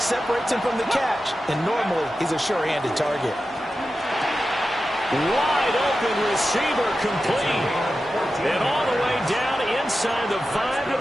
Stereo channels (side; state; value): both; normal; correlation 0.92